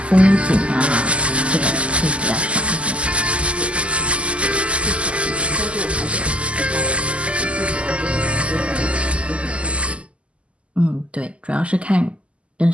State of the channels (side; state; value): left; late; 0.058 ms